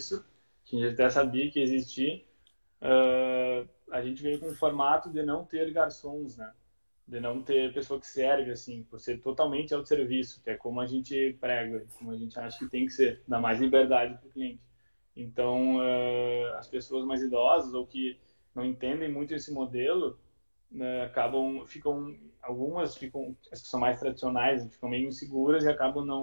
que a gente até sabia que existia. A gente veio com um formato de não ter garçons, né? De não ter pessoa que serve, assim, por ser totalmente autosserviço, que é como a gente prega, como a gente acha que tem que ser, dá mais liberdade para o cliente. Então, as pessoas mais idosas ou que não entendem muito esse modelo, né, algumas ficam, as que são mais tradicionais, ficam meio inseguras e acabam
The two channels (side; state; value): both; inverted; correlation -1.00